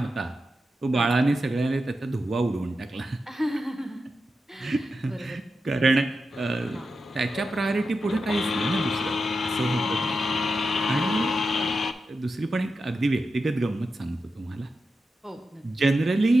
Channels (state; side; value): normal; both; correlation 0.89